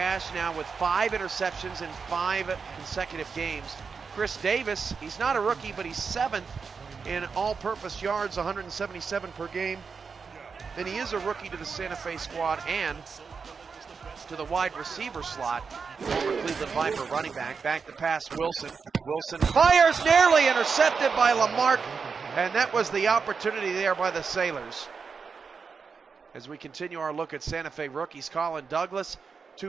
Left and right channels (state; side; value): quieter; left; 5.4 dB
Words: now with 5 interceptions in 5 consecutive games. Chris Davis, he's not a rookie, but he's 7th in all-purpose yards, 177 per game. And he is a rookie to the Santa Fe squad and to the wide receiver slot. Former Cleveland Viper running back to pass Wilson. Wilson fires, nearly intercepted by Lamarck, and that was the opportunity there by the Sailors. As we continue our look at Santa Fe rookies, Colin Douglas,